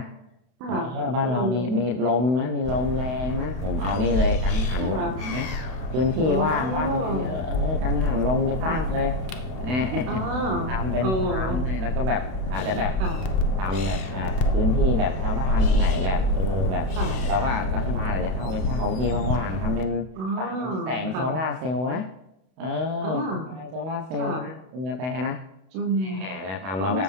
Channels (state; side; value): late; left; 31 ms